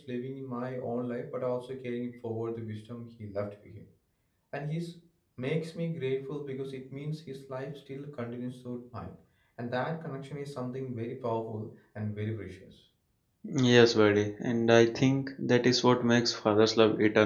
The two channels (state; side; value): identical; both; correlation 1.00